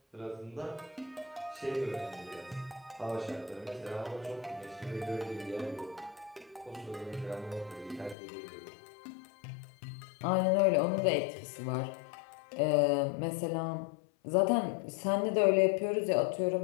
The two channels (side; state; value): right; drops out; at 8.2 s